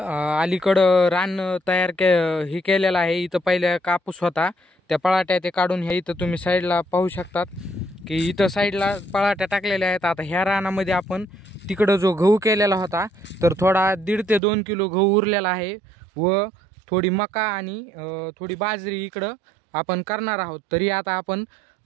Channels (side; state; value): left; drops out; at 14.4 s